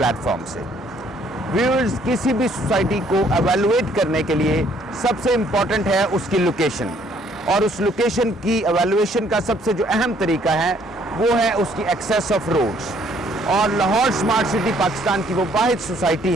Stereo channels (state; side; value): normal; both; correlation 0.64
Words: से। व्यूअर्स, किसी भी सोसाइटी को एवेलुएट करने के लिए सबसे इम्पॉर्टेंट है उसकी लोकेशन, और उस लोकेशन की एवेलुएशन का सबसे जो अहम तरीका है वो है उसकी एक्सेस ऑफ रोड्स। और लाहौर स्मार्ट सिटी पाकिस्तान की वो वाहिद सोसाइटी